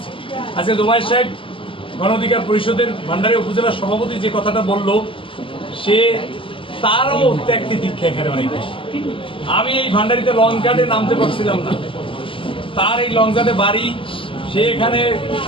আজকে জুমায়ের সাহেব গণ অধিকার পরিষদের ভান্ডারী উপজেলার সভাপতি যে কথাটা বলল, সে তারও ত্যাগটি দীক্ষা এখানে অনেক বেশি। আমি এই ভান্ডারিতে লং গার্ডে নামতে পারছিলাম না, তার এই লং গার্ডে বাড়ি, সে এখানে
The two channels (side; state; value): right; late; 0.25 ms